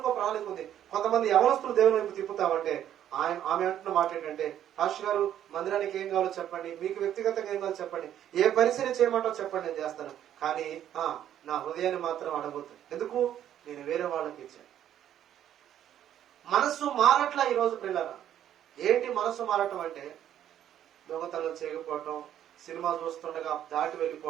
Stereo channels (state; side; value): quieter; left; 10.8 dB